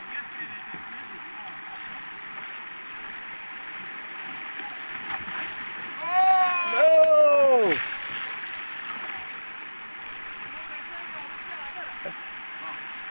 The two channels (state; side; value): inverted; both; correlation -1.00